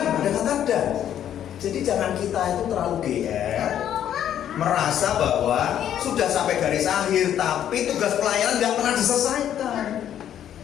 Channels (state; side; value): quieter; right; 10.3 dB